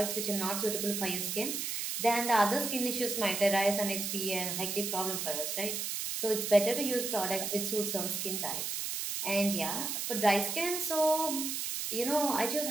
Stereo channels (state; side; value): noise; right; hiss, 2 dB below the sound